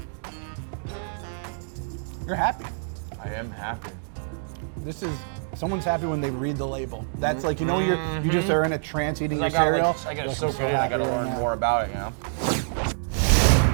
You're happy. I am happy. Someone's happy when they read the label. That's like, you know, you just are in a trance eating your I gotta cereal. I gotta soak it in, I gotta learn more about it, you know?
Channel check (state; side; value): silent; left; digital silence